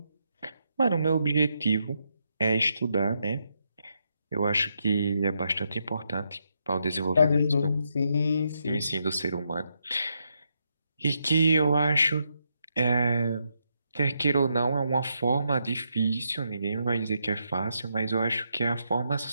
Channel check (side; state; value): both; inverted; correlation -0.81